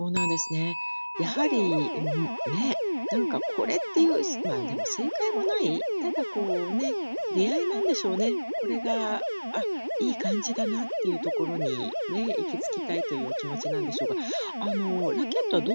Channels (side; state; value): both; inverted; correlation -1.00